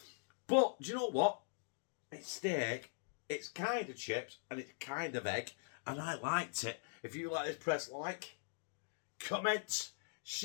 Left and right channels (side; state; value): right; silent; digital silence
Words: But do you know what? It's steak, it's kind of chips, and it's kind of egg, and I liked it. If you like this, press like, comment,